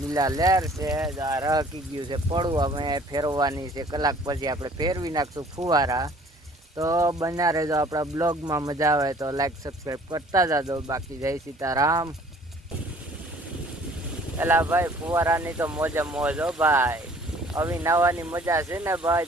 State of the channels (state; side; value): normal; both; correlation 0.54